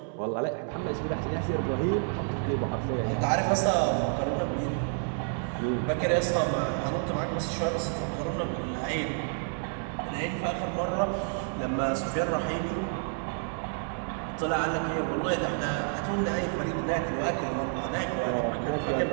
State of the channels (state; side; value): silent; left; 58 dB below the other